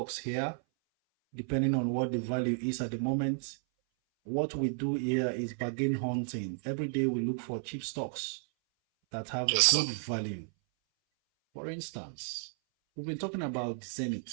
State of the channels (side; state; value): left; silent; 56 dB below the other